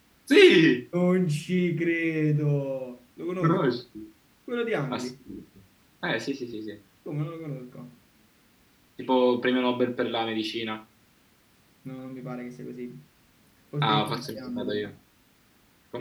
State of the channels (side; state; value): both; identical; correlation 1.00